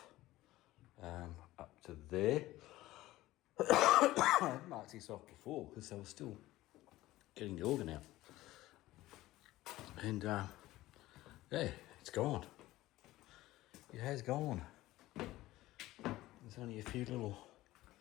up to there. I marked this off before because I was still getting the organ out. And yeah, it's gone. It has gone. There's only a few little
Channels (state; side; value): quieter; right; 16.8 dB